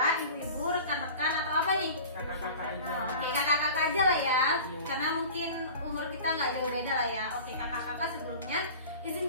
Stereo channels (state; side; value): inverted; both; correlation -0.39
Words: ibu-ibu, rekan-rekan, atau apa nih? Kakak-kakak aja. Oke, kakak-kakak aja lah ya, karena mungkin umur kita nggak jauh beda lah ya. Oke, kakak-kakak, sebelumnya